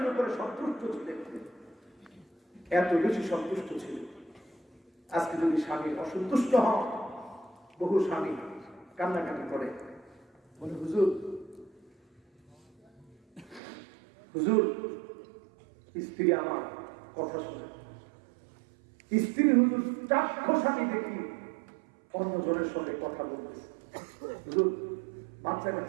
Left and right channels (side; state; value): left; drops out; at 13.6 s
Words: উপরে সন্তুষ্ট ছিলেন, এত বেশি সন্তুষ্ট ছিল। আজকে যদি স্বামী অসন্তুষ্ট হন, বহু স্বামী কান্নাকাটি করে, বলে হুজুর হুজুর স্ত্রী আমার কথা শুনে, স্ত্রী হুজুর চাক্ষুষ আমি দেখি অন্য জনের সঙ্গে কথা বলতেছে। হুজুর বাচ্চা